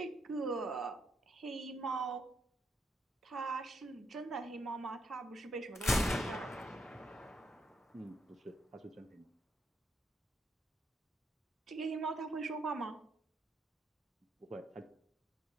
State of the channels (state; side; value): normal; both; correlation 0.76